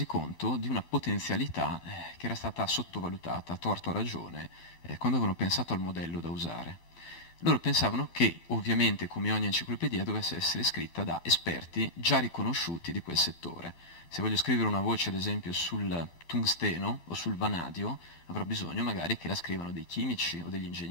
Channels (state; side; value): late; right; 12 ms